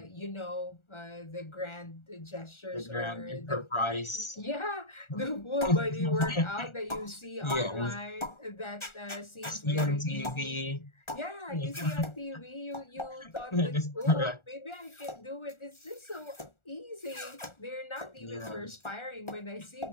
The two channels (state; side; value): late; right; 1.4 ms